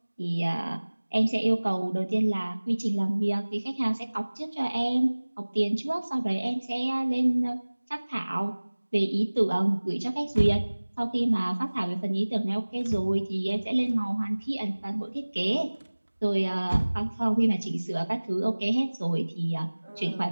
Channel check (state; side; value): inverted; both; correlation -1.00